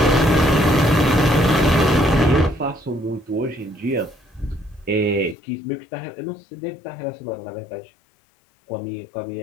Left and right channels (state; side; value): drops out; right; at 5.4 s